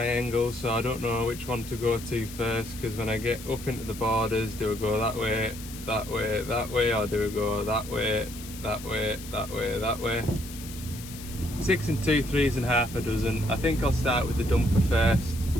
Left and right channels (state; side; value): noise; left; hiss, 14 dB below the sound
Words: so I don't know which one to go to first, because when I get up into the borders, do I go that way, that way, that way, or do I go that way, that way, that way, that way? 6 and 2 3s and half a dozen. I think I'll start with the dumper first,